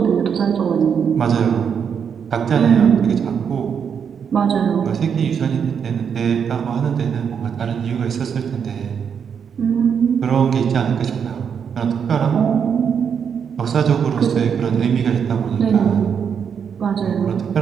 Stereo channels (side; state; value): left; quieter; 7.2 dB